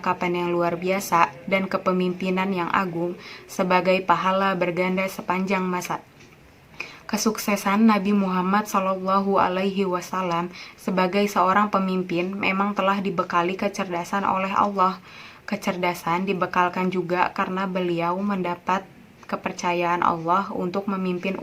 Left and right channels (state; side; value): identical; both; correlation 1.00